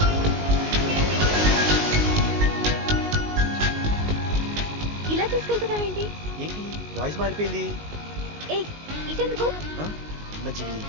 ఇలా తీసుకెళ్తున్నావేంటి? ఏంటి వాయిస్ మారిపోయింది? ఏ ఇటెందుకు? మంచిది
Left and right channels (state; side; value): late; left; 19 ms